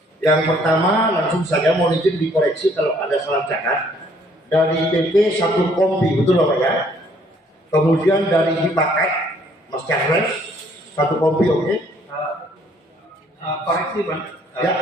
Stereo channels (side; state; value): both; normal; correlation 0.63